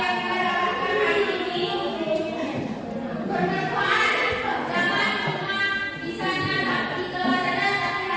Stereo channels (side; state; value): both; identical; correlation 1.00